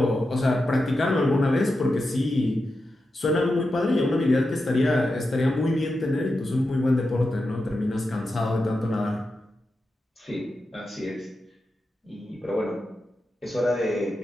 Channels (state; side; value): normal; both; correlation 0.89